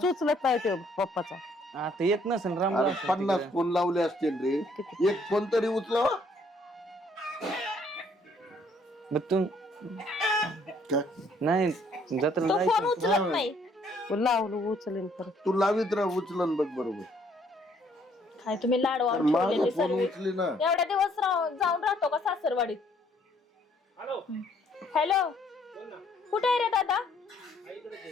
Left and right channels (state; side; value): normal; both; correlation 0.65